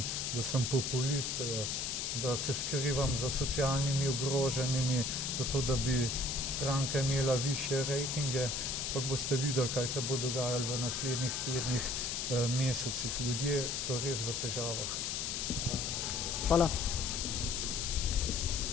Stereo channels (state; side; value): noise; left; hiss, 1 dB below the sound